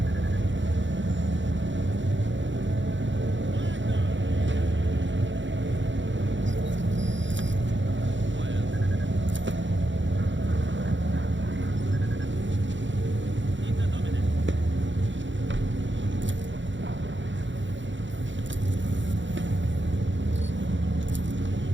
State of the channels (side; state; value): left; late; 0.54 ms